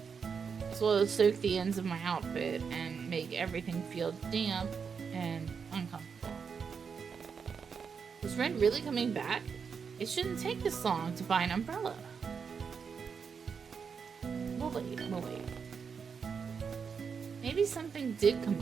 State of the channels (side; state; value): left; quieter; 6.1 dB